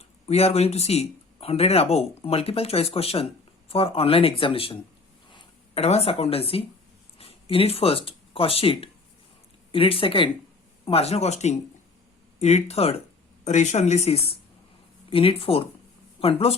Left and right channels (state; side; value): quieter; right; 3.9 dB